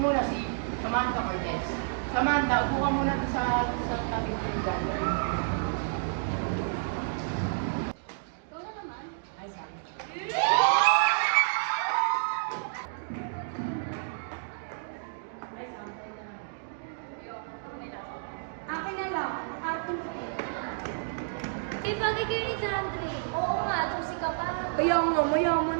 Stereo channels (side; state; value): left; silent; digital silence